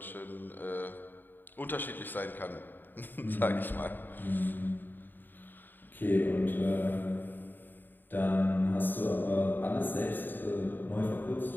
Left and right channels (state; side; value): late; right; 0.092 ms